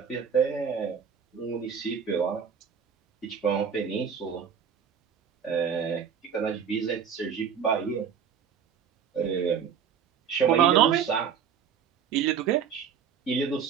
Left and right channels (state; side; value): quieter; left; 7.5 dB